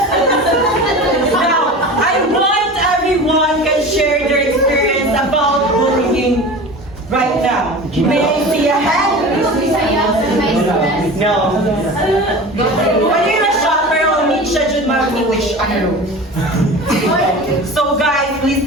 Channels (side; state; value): both; normal; correlation 0.34